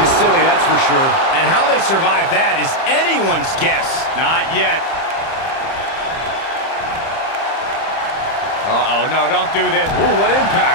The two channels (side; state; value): right; late; 30 ms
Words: silly, that's for sure. And how they survive that is anyone's guess. Not yet. Uh-oh, no, don't do this. Ooh, what